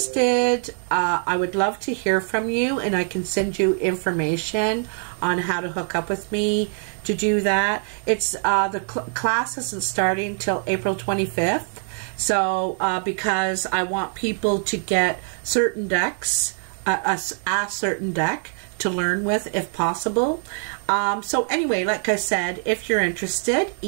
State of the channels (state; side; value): silent; left; 60 dB below the other